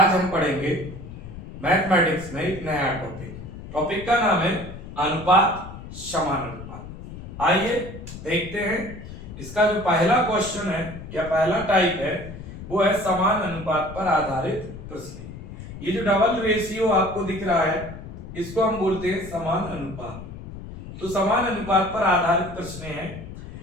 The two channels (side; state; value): left; noise; rumble, 12 dB below the sound